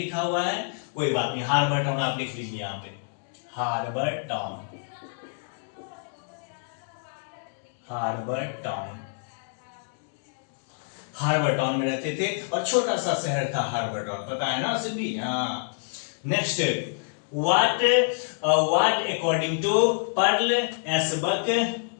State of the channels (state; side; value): silent; right; digital silence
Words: हुआ है, कोई बात नहीं, हार्बर टाउन आप लिख लीजिए यहाँ पे, harbour town, harbour town. Harbour town में रहते थे और छोटा सा शहर था हार्बर टाउन, पता है ना सिंधी? हाँ। Next, what according to Pearl Asbuck